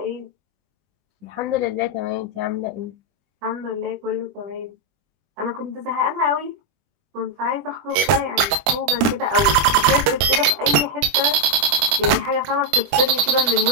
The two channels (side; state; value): left; late; 21 ms